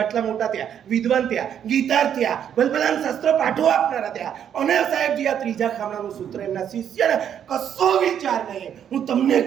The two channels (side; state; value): left; quieter; 9.1 dB